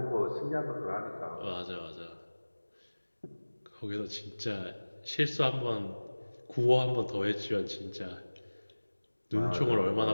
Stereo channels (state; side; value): inverted; both; correlation -1.00